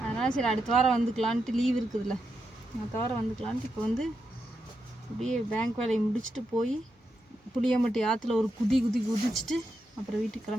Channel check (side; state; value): both; normal; correlation 0.85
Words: அதனால் சரி அடுத்த வாரம் வந்துக்கலான்ட்டு, லீவ் இருக்குதுல்ல, அடுத்த வாரம் வந்துக்கலான்ட்டு இப்போ வந்து அப்படியே பேங்க் வேலையை முடிச்சுட்டு போய் புளியம்பட்டி ஆற்றுல ஒரு குதிச்சுட்டு அப்புறம் வீட்டுக்கு